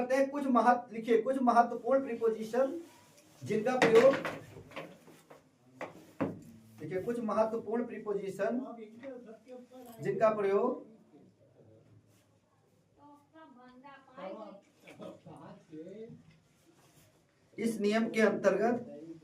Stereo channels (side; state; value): both; identical; correlation 1.00